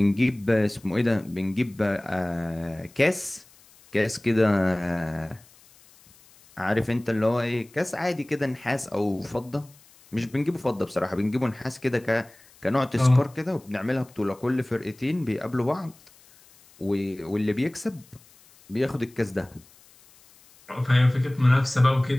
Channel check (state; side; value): noise; left; hiss, 27 dB below the sound